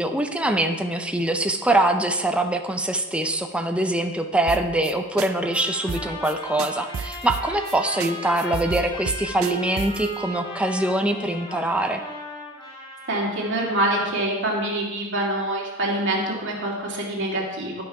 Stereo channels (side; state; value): both; normal; correlation 0.48